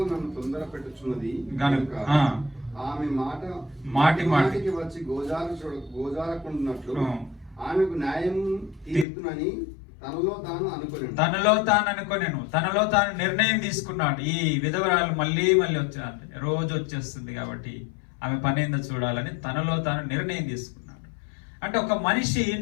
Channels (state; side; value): drops out; right; at 9.1 s